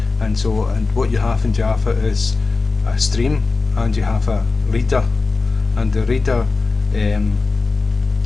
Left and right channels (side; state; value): right; quieter; 3.9 dB